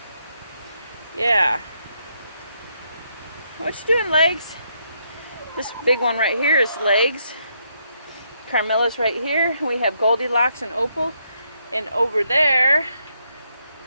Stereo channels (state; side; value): inverted; both; correlation -0.76